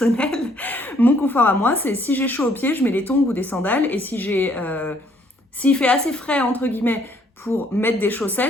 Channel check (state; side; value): normal; both; correlation 0.65